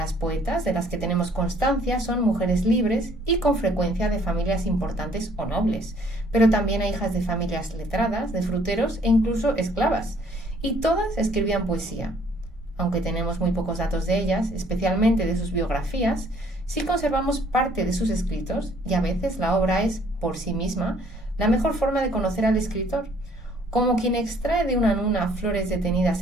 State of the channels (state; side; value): normal; both; correlation 0.61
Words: poetas de las que tenemos constancia son mujeres libres y con frecuencia de familias importantes o nobles, pero también hay hijas de familias letradas, de fruteros e incluso esclavas, y todas escribían poesía. Aunque tenemos muy pocos datos de ellas, especialmente de sus biografías, sí conservamos parte de sus escritos y a veces la obra es, por sí misma, la mejor forma de conocer al escritor. Como quien extrae de una nuna flores detenidas